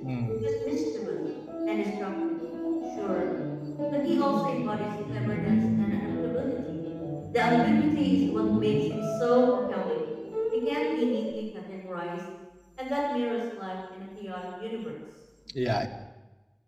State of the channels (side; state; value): both; identical; correlation 1.00